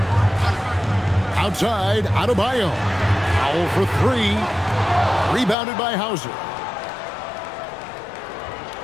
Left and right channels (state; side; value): drops out; right; at 5.6 s